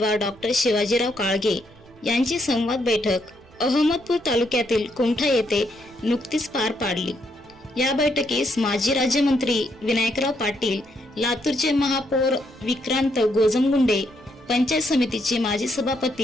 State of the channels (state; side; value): noise; right; rumble, 26 dB below the sound